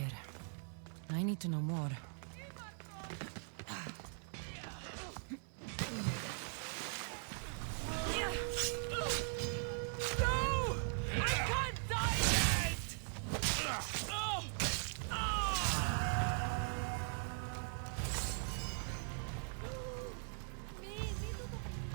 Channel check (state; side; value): silent; left; 51 dB below the other